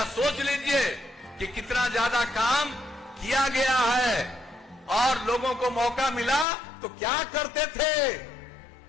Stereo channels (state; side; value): drops out; right; at 6.5 s